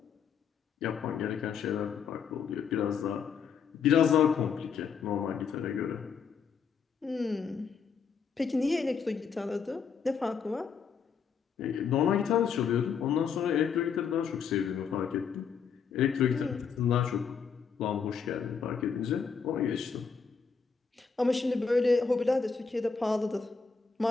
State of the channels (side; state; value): right; quieter; 6.1 dB